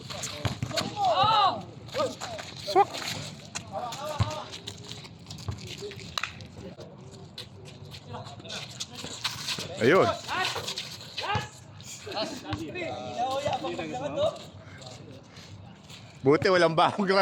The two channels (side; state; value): both; identical; correlation 1.00